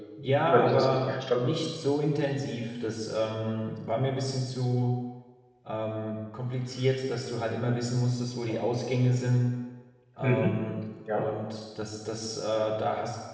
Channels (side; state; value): both; identical; correlation 1.00